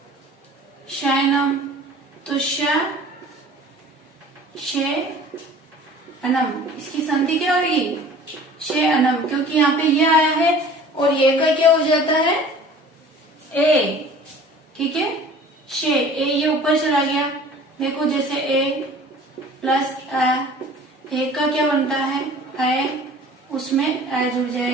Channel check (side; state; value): both; normal; correlation 0.46